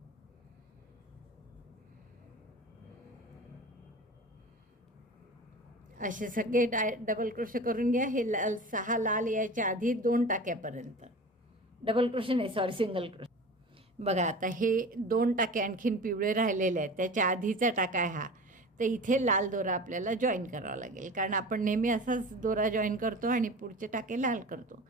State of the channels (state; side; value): normal; both; correlation 0.35